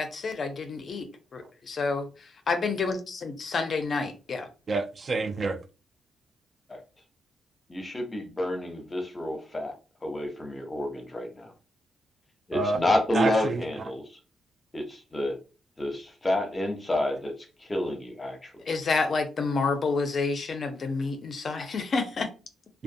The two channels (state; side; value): normal; both; correlation 0.84